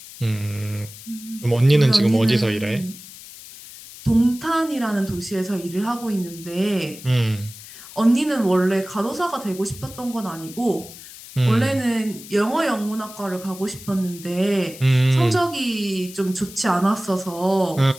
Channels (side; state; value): left; noise; hiss, 16 dB below the sound